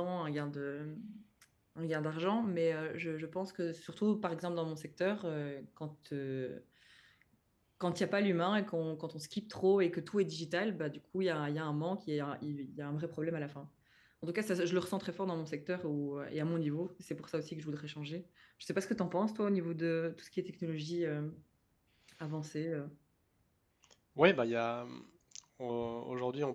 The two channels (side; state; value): both; identical; correlation 1.00